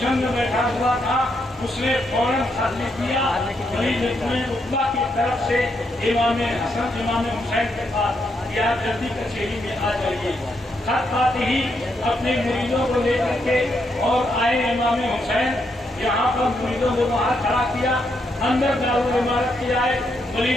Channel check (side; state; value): both; normal; correlation 0.79